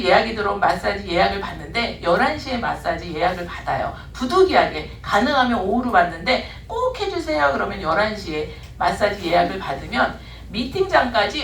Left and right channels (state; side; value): identical; both; correlation 1.00